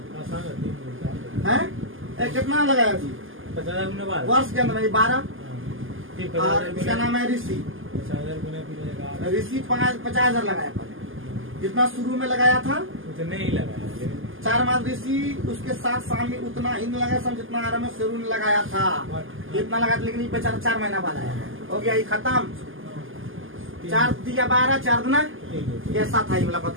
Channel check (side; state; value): left; late; 0.59 ms